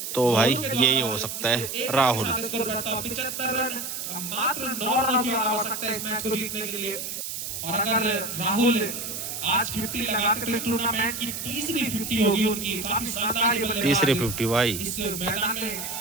तो भाई यही हो सकता है राहुल। 75 रन, मात्र 9 रनों की आवश्यकता है इस मैच को जीतने के लिए। और अगर राहुल आज 50 लगाते तो इस टूर्नामेंट की तीसरी 50 होगी उनकी। काफी शानदार बल्लेबाजी। तीसरी 50 भाई। इस मैदान में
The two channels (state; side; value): noise; right; hiss, 6 dB below the sound